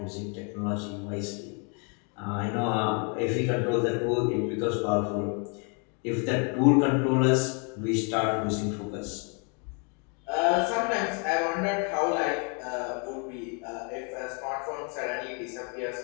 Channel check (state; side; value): quieter; right; 37.2 dB